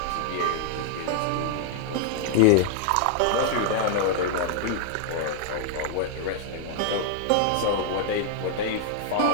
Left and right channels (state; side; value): different; both; correlation 0.00